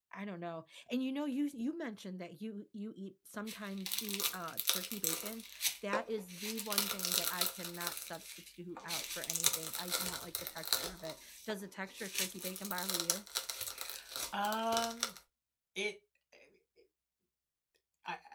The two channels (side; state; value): both; identical; correlation 1.00